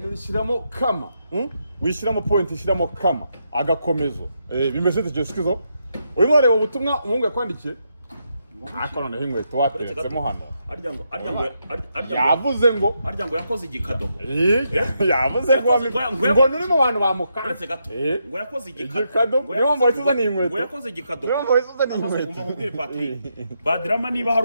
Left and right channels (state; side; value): inverted; both; correlation -0.81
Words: nishiramo kama wishiramo point ishiramo kama agakomezo bimeze tegeskizo uyu mwareba ubutumwa umuhungu yakwandikiye akorana h'inkweto wateretsemo hano yavuze ngo yakoze igikado yavuze ngo nuri mu bantu bamukanze gato ngo yakoze igikado niyo ngo yituzana inkweto ngo yakoze igikado niyo ngo yituzana inkweto umubwire Patrick BAD RAMA niba